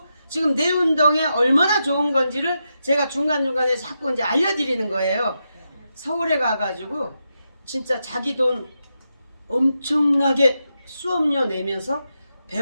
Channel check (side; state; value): both; inverted; correlation -0.86